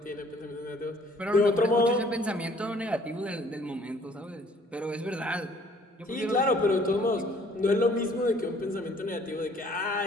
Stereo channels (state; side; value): normal; both; correlation 0.58